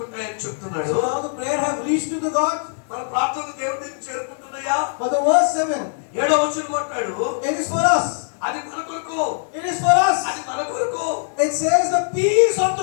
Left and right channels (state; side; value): silent; right; 58 dB below the other